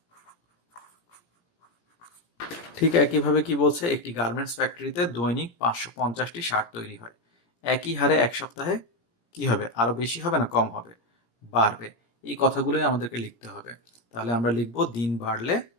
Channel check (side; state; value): right; late; 17 ms